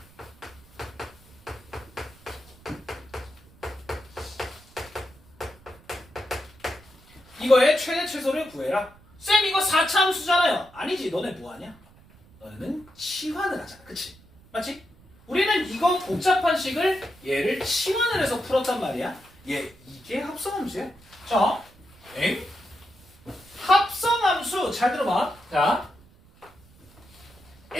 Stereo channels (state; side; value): noise; right; rumble, 26 dB below the sound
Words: 이거의 최대 최소를 구해라. 쌤, 이거 4차 함수잖아요. 아니지, 너네 뭐하냐? 너네는 치환을 하잖아, 그치? 맞지? 우리는 이거 복잡한 식을 얘를 치환을 해서 풀었단 말이야. 이게 합성함수야. 자, 합성함수 잘 들어봐. 자,